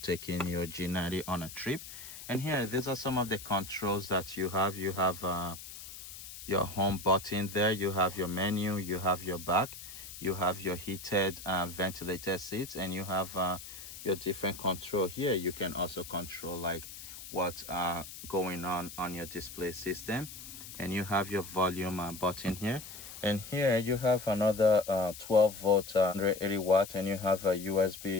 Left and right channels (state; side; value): noise; left; hiss, 13 dB below the sound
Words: your G90 on a trip. And here, these are some of the controls that you have. You have your home button there, you have your menu, you have your back, you have your heated ventilated seats, and you have your different control here. You can also control like what's going on your display system, and you have your volume button here. And here you have another 12-volt 180-watt, and you have a